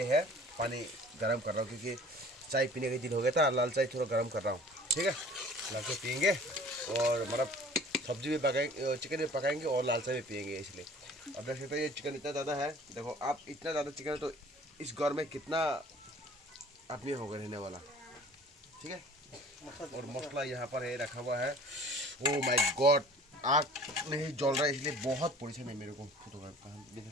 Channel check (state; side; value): normal; both; correlation 0.48